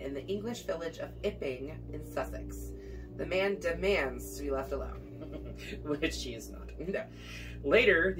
the English village of Ipping in Sussex. The man demands to be left alone. Which he is not. No. Later,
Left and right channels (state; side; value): identical; both; correlation 1.00